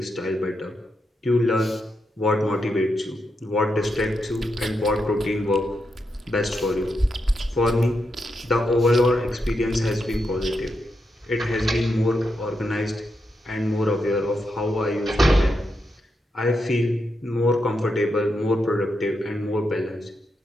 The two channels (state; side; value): normal; both; correlation 0.84